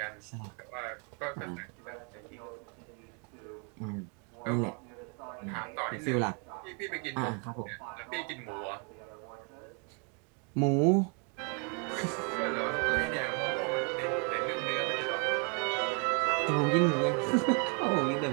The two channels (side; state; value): left; quieter; 37.0 dB